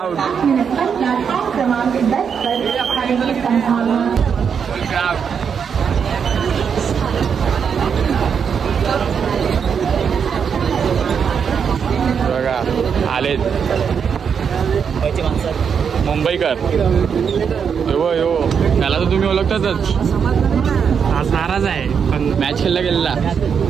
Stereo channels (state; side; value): quieter; left; 6.9 dB